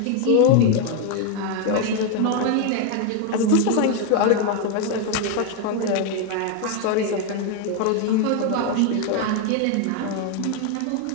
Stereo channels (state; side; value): different; both; correlation 0.01